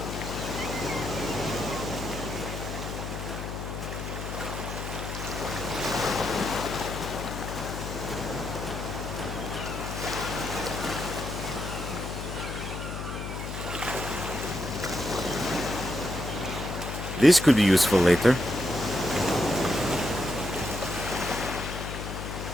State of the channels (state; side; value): noise; left; hum, 6 dB below the sound